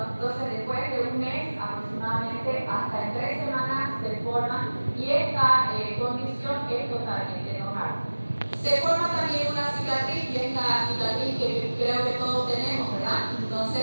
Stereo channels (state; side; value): inverted; both; correlation -1.00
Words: Entonces, después de 1 mes aproximadamente, hasta en 3 semanas se forma, y esta condición es totalmente normal. Se forma también una cicatriz, y es la cicatriz que creo que todos tenemos, ¿verdad?